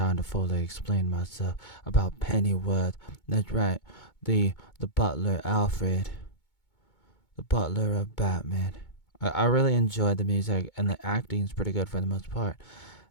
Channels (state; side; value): late; right; 2.2 ms